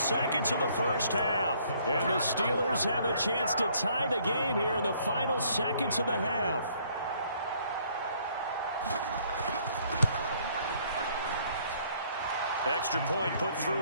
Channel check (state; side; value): inverted; both; correlation -0.63